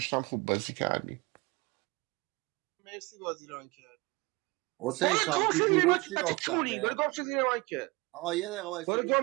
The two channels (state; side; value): quieter; left; 24.4 dB